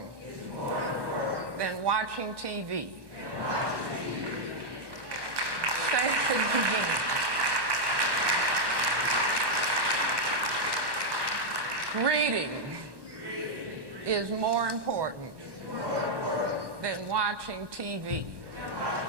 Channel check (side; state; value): left; late; 1.2 ms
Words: than watching TV. Say it again. Reading is more important than watching TV.